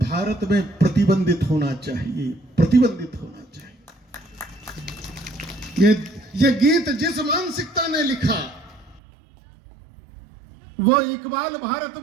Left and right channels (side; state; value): left; drops out; at 9.0 s